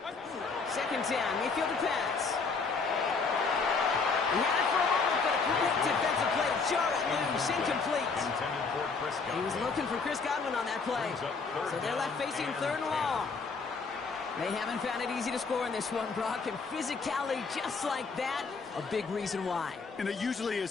Second down, Mayfield to pass. He had it for a moment, but a quick defensive play to jar it loose, incomplete. He was looking for Chris Godwin on that play. So they're left facing third and long. They haven't found it easy to score in this one, Brock, and physicality just like that, a big reason why. And it usually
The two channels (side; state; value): right; quieter; 4.7 dB